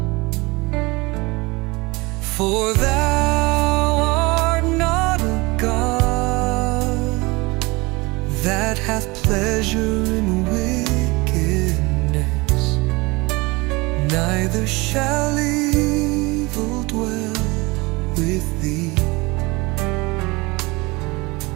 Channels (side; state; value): left; quieter; 24.3 dB